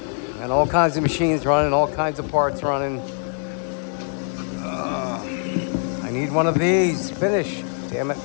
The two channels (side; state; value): right; silent; 57 dB below the other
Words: Got all kinds of machines running, all kinds of parts running. I need one of these. Finish. Damn it,